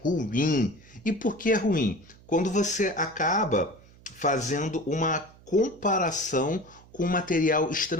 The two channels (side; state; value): right; noise; hum, 25 dB below the sound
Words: ruim. E por que é ruim? Quando você acaba fazendo uma comparação com o material